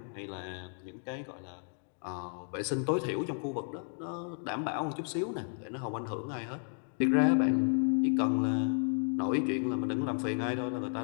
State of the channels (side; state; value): right; silent; 56 dB below the other